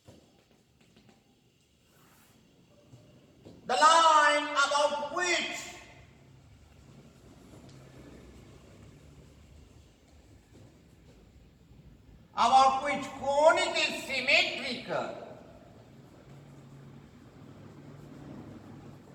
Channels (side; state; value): both; identical; correlation 1.00